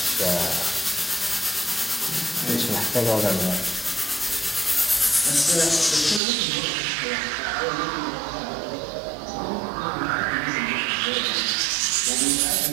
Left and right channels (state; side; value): drops out; left; at 6.2 s